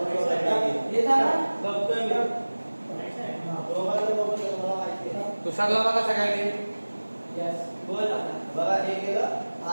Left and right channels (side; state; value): both; inverted; correlation -1.00